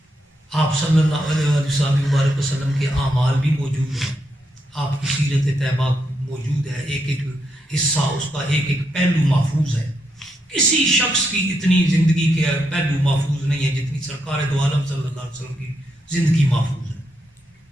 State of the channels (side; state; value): both; normal; correlation 0.81